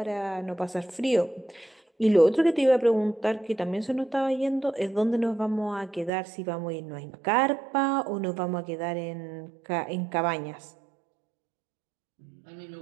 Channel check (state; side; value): drops out; left; at 6.1 s